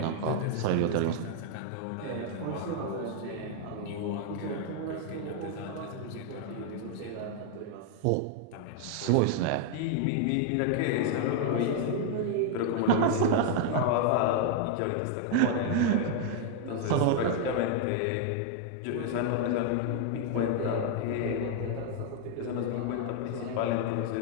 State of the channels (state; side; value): different; both; correlation 0.00